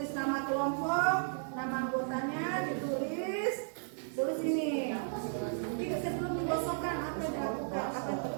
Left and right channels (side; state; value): left; silent; digital silence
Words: nama kelompok, nama anggotanya ditulis. Tulis ini. Nanti sebelum digosokkan apa yang dilakukan, apa yang